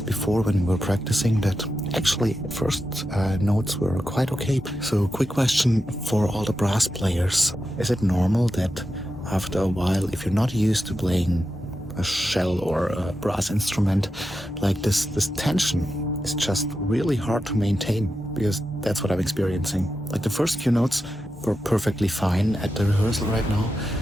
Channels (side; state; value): both; normal; correlation 0.89